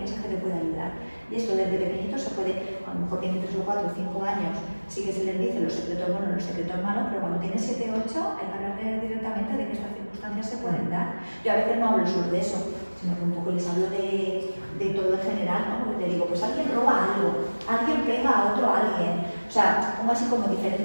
que te puede ayudar. Y esto desde pequeñito se puede, a lo mejor tiene 3 o 4 o 5 años, sí que se les dice los secretos buenos, los secretos malos, pero cuando tiene 7 o 8 hay que hablar directamente de que estas circunstancias se pueden dar. Yo a veces no hablo solo de eso, sino que un poco les hablo de todo en general, ¿no? Porque te digo, pues alguien roba algo, alguien pega a otro alguien. O sea, pongo así como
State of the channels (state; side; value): inverted; both; correlation -1.00